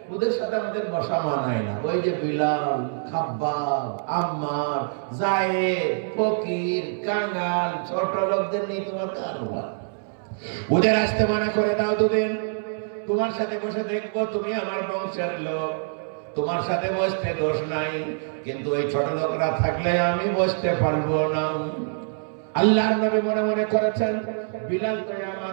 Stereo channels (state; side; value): silent; left; 62 dB below the other